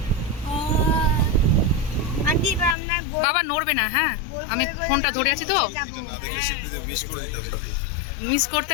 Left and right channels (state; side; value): drops out; right; at 2.8 s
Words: আন্টি আমরা বাবা নড়বে না, হ্যাঁ আমি ফোনটা ধরে আছি তো, মিস করতে